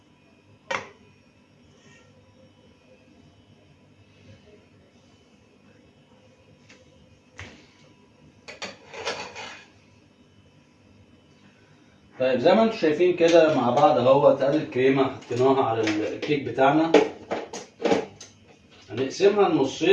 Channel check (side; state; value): both; identical; correlation 1.00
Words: طيب زي ما انتم شايفين كده مع بعض اهوت، ادي الكريمه حطيناها على الكيك بتاعنا. هنقسمها